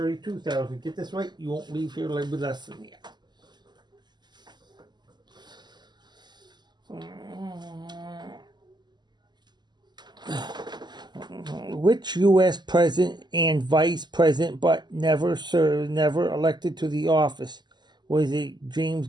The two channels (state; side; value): late; left; 0.21 ms